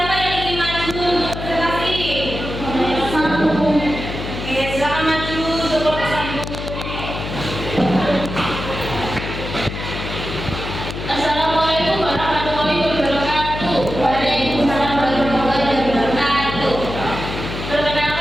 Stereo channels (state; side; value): noise; left; hum, 7 dB below the sound